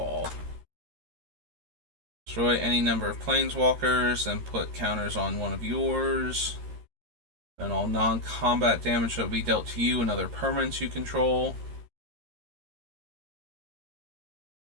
Destroy any number of planeswalkers and put counters on one of yours. And all non-combat damage that will be dealt to you and other permanents you control.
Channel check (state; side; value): late; left; 13 ms